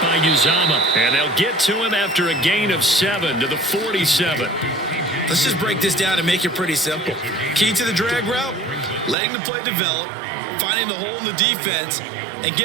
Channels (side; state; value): left; drops out; at 9.2 s